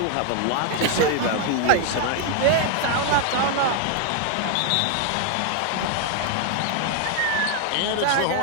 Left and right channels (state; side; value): different; both; correlation 0.00